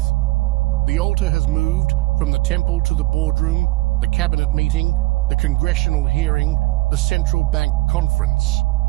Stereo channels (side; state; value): left; quieter; 20.6 dB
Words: The altar has moved from the temple to the boardroom, the cabinet meeting, the congressional hearing, the central bank conference.